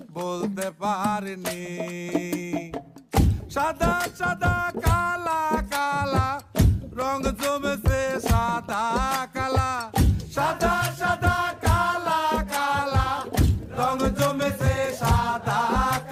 বলতে পারিনি। সাদা সাদা কালা কালা রং জমেছে সাদা কালা, সাদা সাদা কালা কালা রং জমেছে সাদা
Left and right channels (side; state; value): both; identical; correlation 1.00